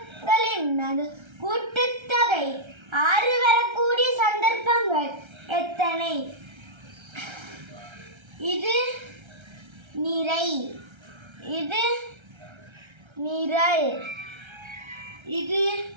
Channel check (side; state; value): left; late; 1.3 ms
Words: கூட்டுத்தொகை 6 வரக்கூடிய சந்தர்ப்பங்கள் எத்தனை? இது நிறை, இது நிரல், இது